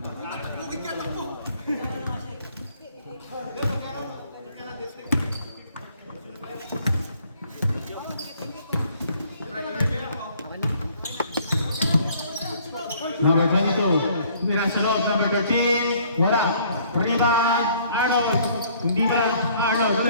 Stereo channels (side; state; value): both; inverted; correlation -0.60